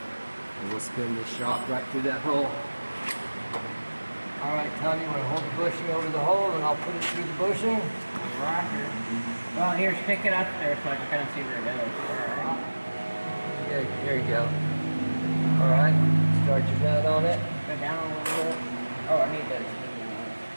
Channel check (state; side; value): inverted; both; correlation -1.00